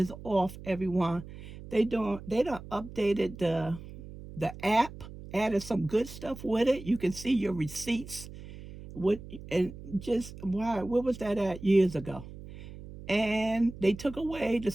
off, everyone. They don't updated the app, added some good stuff with it. You can see your receipts. What and just why what was that at years ago? And they took away the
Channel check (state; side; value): noise; right; hum, 14 dB below the sound